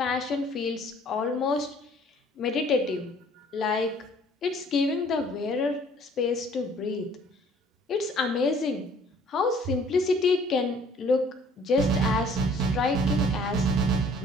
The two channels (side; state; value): both; normal; correlation 0.55